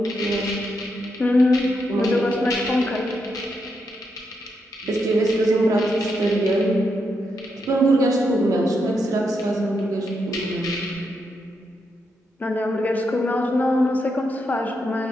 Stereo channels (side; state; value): both; normal; correlation 0.82